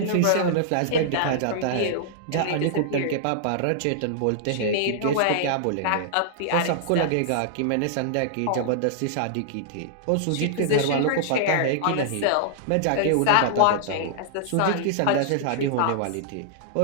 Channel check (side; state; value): both; different; correlation -0.01